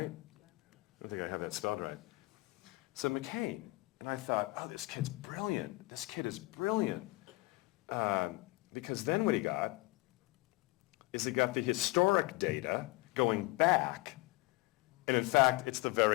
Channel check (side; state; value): right; quieter; 22.1 dB